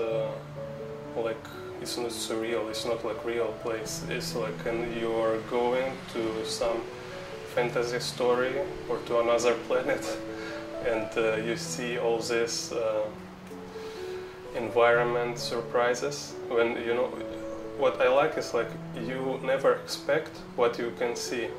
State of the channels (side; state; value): both; identical; correlation 1.00